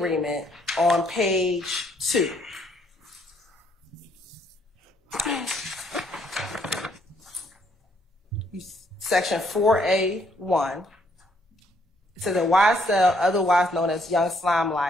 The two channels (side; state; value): both; normal; correlation 0.69